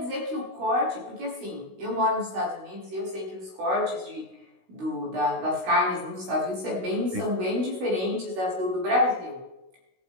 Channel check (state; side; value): late; left; 16 ms